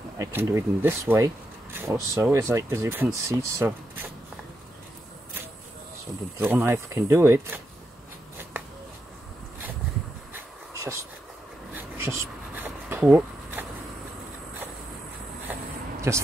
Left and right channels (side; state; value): both; normal; correlation 0.84